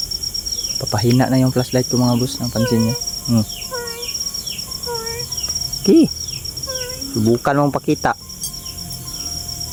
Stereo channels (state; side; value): identical; both; correlation 1.00